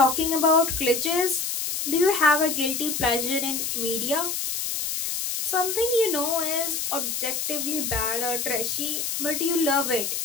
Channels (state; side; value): noise; left; hiss, 2 dB below the sound